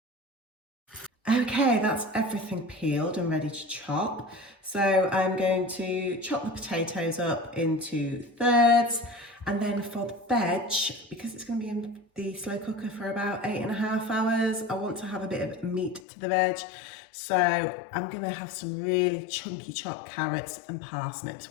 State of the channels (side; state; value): right; drops out; at 16.0 s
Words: Okay, that's everything peeled and ready to chop. So I'm going to chop the potatoes up into thirds, and then for the veg, because it's going to be in the slow cooker for about 8.5 hours, I want to have a bit of meat to the veg. So I'm going to have some really chunky chopped carrots and parsnips.